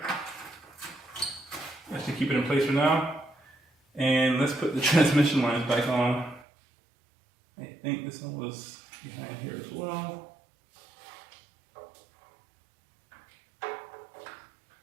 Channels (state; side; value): drops out; left; at 6.5 s